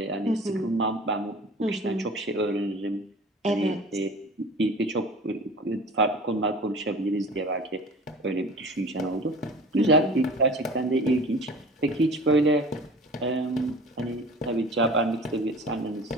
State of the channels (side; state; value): both; normal; correlation 0.41